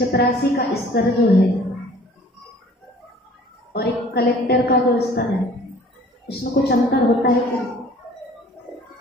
का स्तर जो है और एक कलेक्टर का जो स्तर है, उसमें कुछ अंतर होता है क्या?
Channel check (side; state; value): both; normal; correlation 0.51